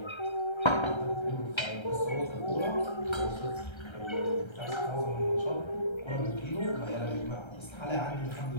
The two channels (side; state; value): right; late; 1.3 ms